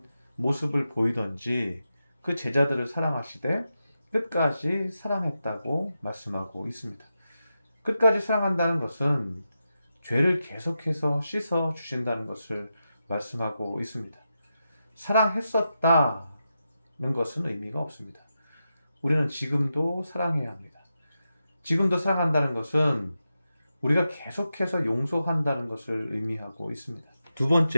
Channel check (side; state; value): both; inverted; correlation -0.89